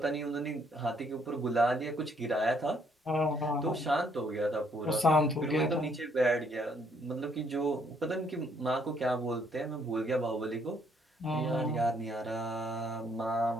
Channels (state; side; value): normal; both; correlation 0.68